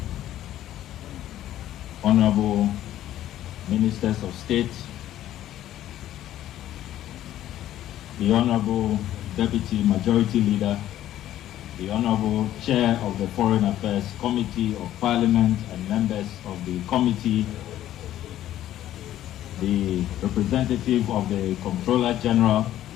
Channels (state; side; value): quieter; right; 12.7 dB